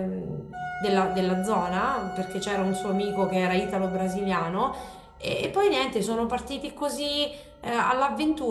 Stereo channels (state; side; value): identical; both; correlation 1.00